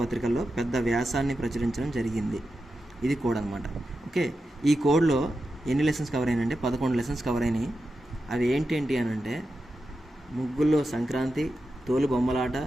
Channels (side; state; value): both; normal; correlation 0.90